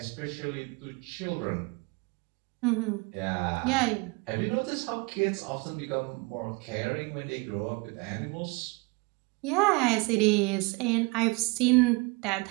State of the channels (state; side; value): quieter; left; 27.8 dB